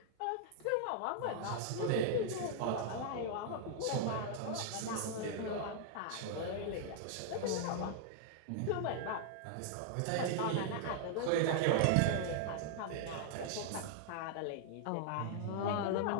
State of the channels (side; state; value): both; different; correlation 0.00